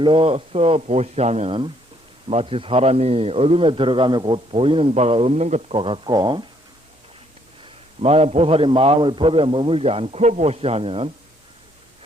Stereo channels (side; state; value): both; normal; correlation 0.67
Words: 보시하면 마치 사람이 어둠에 들어가며 곧 보이는 바가 없는 것과 같고, 만약 보살이 마음을 법에 머물지 않고 보시하면